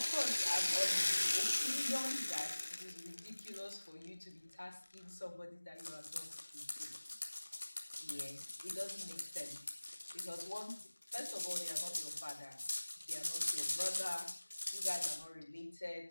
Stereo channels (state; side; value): inverted; both; correlation -1.00